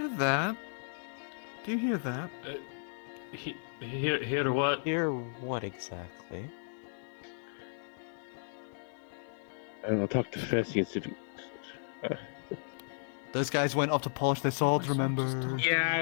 that? Do you hear that? Hear what? Hear what exactly? I don't know, talk to Fessy and see if he... Those guys went off to polish their swords, remember? Yeah,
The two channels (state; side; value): silent; right; 55 dB below the other